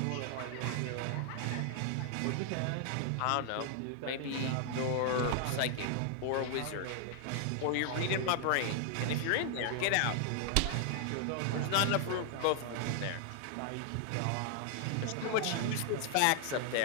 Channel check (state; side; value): different; both; correlation 0.00